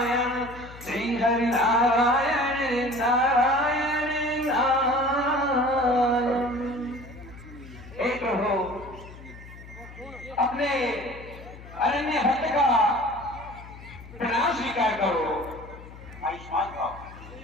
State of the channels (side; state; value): left; noise; hum, 17 dB below the sound